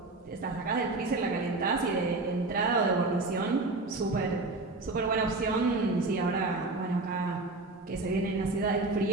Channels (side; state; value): left; quieter; 3.3 dB